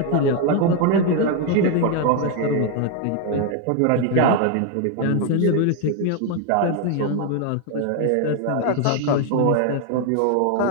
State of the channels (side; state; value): both; different; correlation 0.01